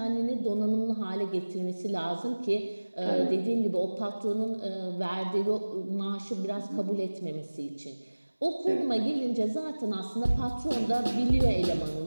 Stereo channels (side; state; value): both; inverted; correlation -1.00